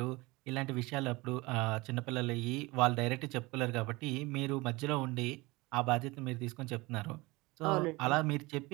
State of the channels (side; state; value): left; quieter; 22.9 dB